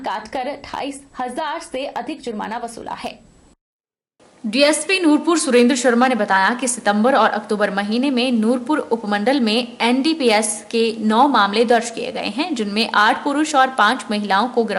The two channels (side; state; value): both; identical; correlation 1.00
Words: काटकर 28,000 से अधिक जुर्माना वसूला है। डीएसपी नूरपुर सुरेंद्र शर्मा ने बताया कि सितंबर और अक्टूबर महीने में नूरपुर उपमंडल में एनडीपीएस के 9 मामले दर्ज किए गए हैं, जिनमें 8 पुरुष और 5 महिलाओं को